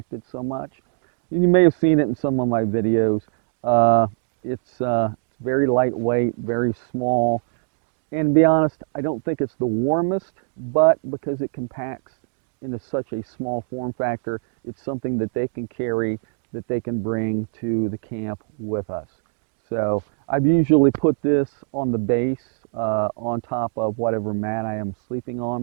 so much. And you may have seen it in some of my videos. It's very lightweight, very small, and to be honest, I don't think it's the warmest, but because it compacts into such a small form factor, it's something that they can carry, that they can bring to the camp with us. So I've usually put this on the base on top of whatever mat I am sleeping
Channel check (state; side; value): silent; left; digital silence